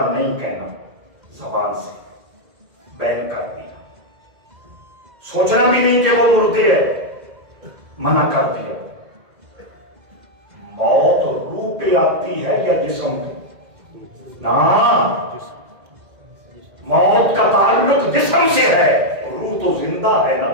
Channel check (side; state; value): left; late; 2.0 ms